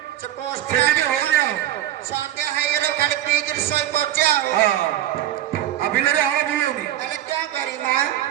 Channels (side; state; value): left; quieter; 12.9 dB